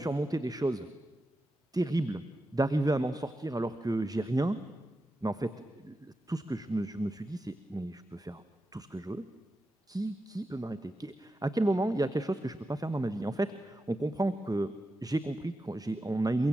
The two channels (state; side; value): normal; both; correlation 0.90